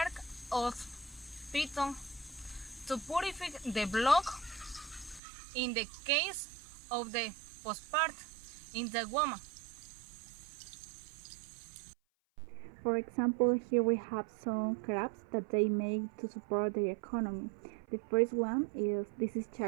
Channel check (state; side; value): drops out; left; at 5.2 s